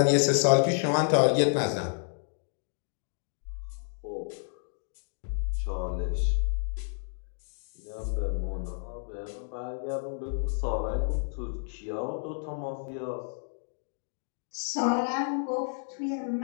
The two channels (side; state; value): right; silent; 58 dB below the other